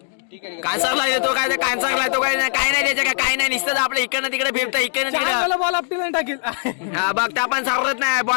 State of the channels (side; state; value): right; silent; 58 dB below the other